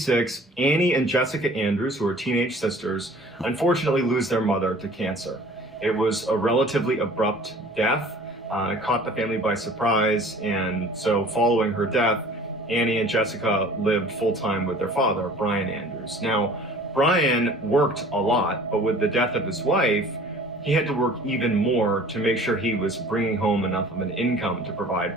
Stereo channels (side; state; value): both; normal; correlation 0.48